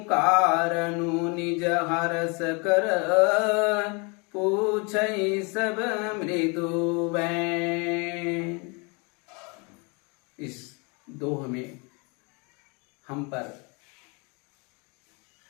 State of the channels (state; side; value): quieter; right; 31.3 dB